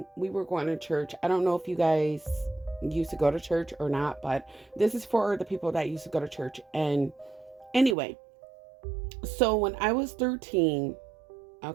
we were going to church. I don't know if you guys used to go to church or not, but this is for the people that used to go to church. And anyway, so when I was 13,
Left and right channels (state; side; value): drops out; left; at 8.0 s